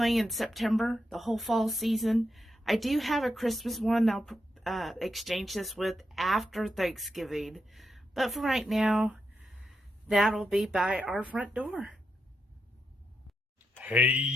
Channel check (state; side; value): normal; both; correlation 0.84